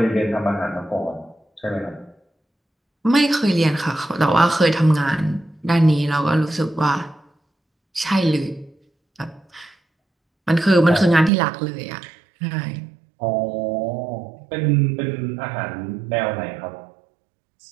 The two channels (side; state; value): left; drops out; at 11.3 s